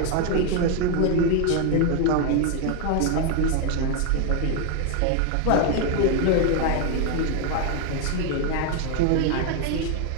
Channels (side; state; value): both; different; correlation 0.01